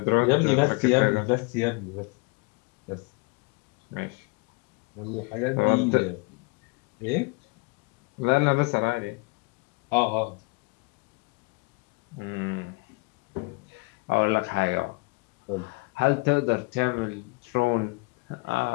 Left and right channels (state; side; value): quieter; right; 27.9 dB